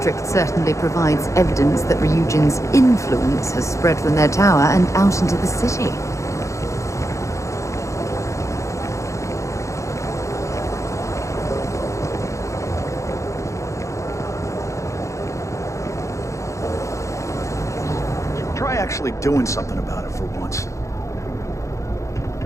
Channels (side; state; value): right; late; 0.15 ms